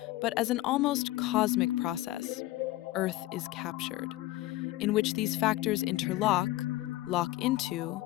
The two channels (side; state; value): right; quieter; 17.2 dB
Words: but as an almost cosmic process. Earth is captured, in which these factors interlock, lock into,